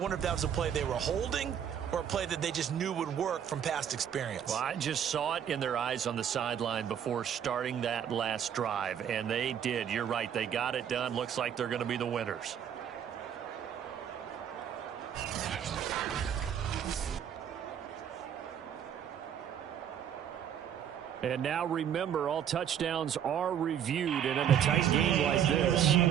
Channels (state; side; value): quieter; left; 9.1 dB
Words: if that was a play they were holding or a play that they just knew would work from past experience. Well, I just saw it in their eyes on the sideline before starting that last drive, and they did. You're right. They got it done. Looks like they're going to be the winners. And now remember, all touchdowns are reviewed, and in a tight game like this,